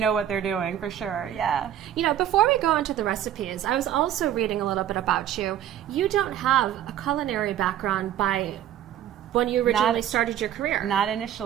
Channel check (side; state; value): left; quieter; 11.1 dB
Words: what they're doing, for sure, yeah. You know, before we go into the recipes, I was also reading a little bit about you. You don't have a culinary background by when you originally started your career. Not